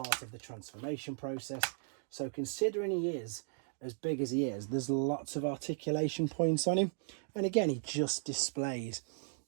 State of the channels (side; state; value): left; silent; digital silence